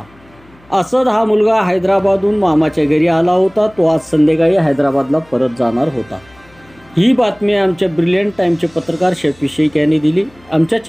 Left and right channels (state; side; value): noise; left; hum, 29 dB below the sound